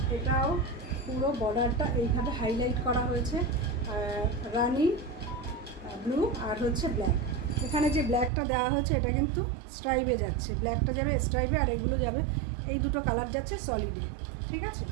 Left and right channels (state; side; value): drops out; left; at 8.3 s